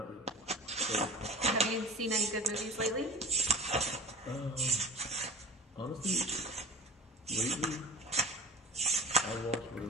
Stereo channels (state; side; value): normal; both; correlation 0.36